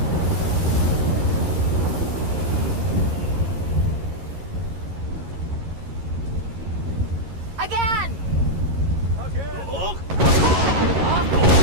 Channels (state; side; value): late; left; 11 ms